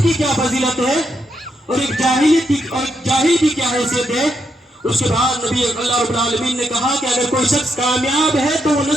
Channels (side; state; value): both; normal; correlation 0.80